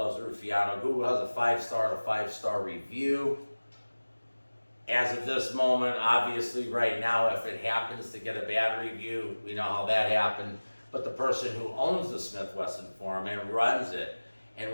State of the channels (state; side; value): inverted; both; correlation -1.00